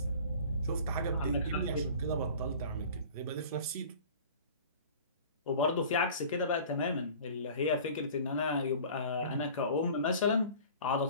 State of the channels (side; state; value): both; inverted; correlation -0.43